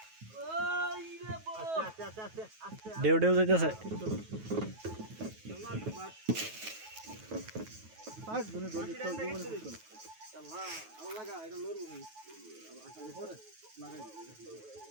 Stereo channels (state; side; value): late; left; 9.3 ms